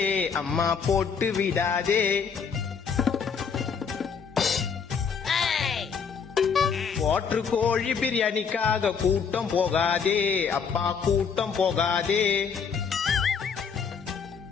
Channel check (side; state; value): right; quieter; 6.3 dB